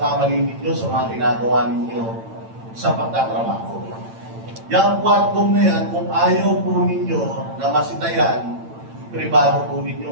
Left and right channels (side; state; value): left; late; 8.9 ms